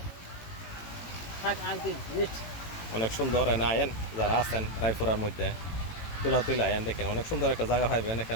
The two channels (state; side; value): late; right; 18 ms